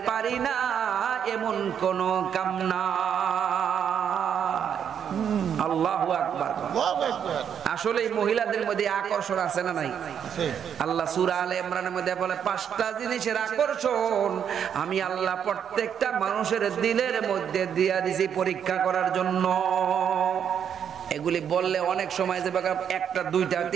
পারি না এমন কোন কাম না। আল্লাহু আকবার। আসলে মহিলাদের মধ্যে আকর্ষণ আছে না নাই? আল্লাহ সূরা আলে ইমরানের মধ্যে বলে 5টা জিনিসের আকর্ষণ আমি আল্লাহ প্রত্যেকটা মানুষের দিলের মধ্যে দিয়া দিছি পরীক্ষা করার জন্য। এগুলি বললে অনেক সময় যে একটা দুইটা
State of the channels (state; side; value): quieter; left; 8.3 dB